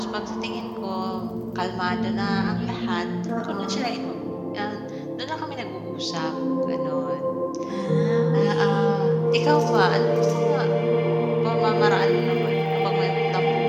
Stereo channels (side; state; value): both; identical; correlation 1.00